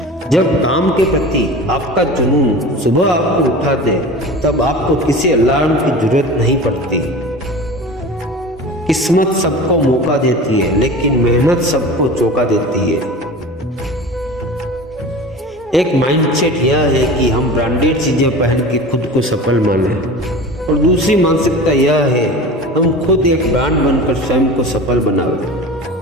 जब काम के प्रति आपका जुनून सुबह आपको उठा दे तब आपको किसी अलार्म की जरूरत नहीं पड़ती। किस्मत सबको मौका देती है लेकिन मेहनत सबको चौंका देती है। एक माइंडसेट यह है कि हम ब्रांडेड चीजें पहन के खुद को सफल माने, और दूसरी मानसिकता यह है हम खुद एक ब्रांड बनकर स्वयं को सफल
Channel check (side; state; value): both; normal; correlation 0.35